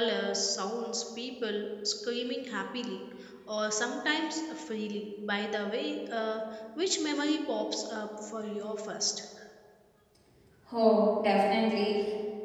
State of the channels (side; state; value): both; identical; correlation 1.00